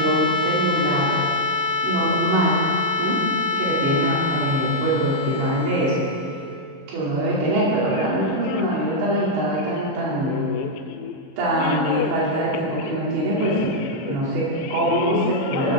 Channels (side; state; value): both; normal; correlation -0.05